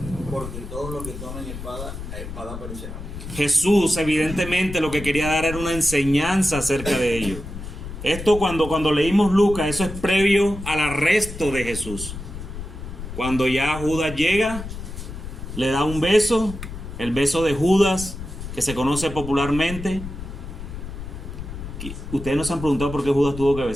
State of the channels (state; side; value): noise; left; rumble, 10 dB below the sound